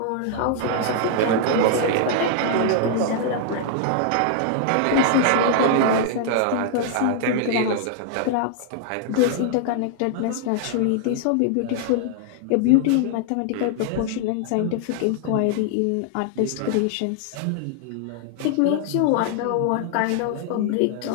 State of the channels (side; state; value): both; different; correlation 0.00